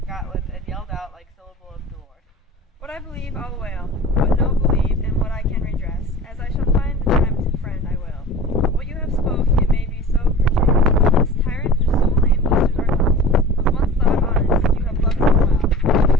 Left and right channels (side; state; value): both; normal; correlation 0.39